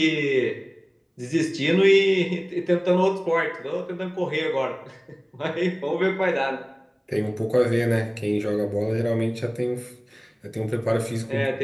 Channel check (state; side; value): identical; both; correlation 1.00